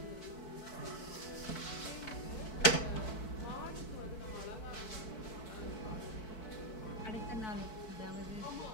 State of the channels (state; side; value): late; right; 4.6 ms